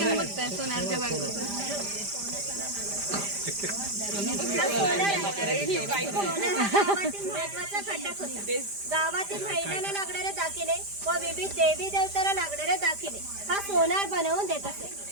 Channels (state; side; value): late; left; 5.0 ms